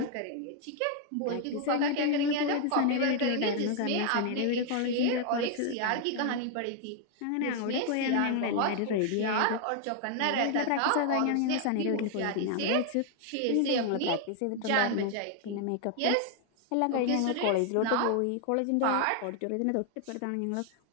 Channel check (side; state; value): both; different; correlation 0.00